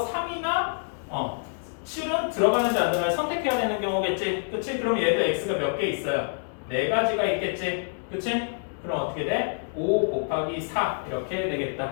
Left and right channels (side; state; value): right; silent; 60 dB below the other